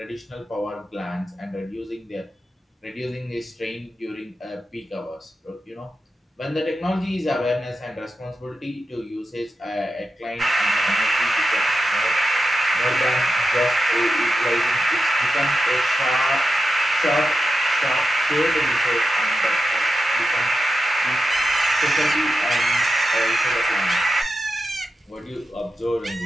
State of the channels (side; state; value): both; normal; correlation 0.90